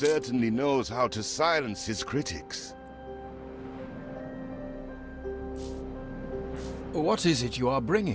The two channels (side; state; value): both; identical; correlation 1.00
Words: knows how to silence his critics. What is it you are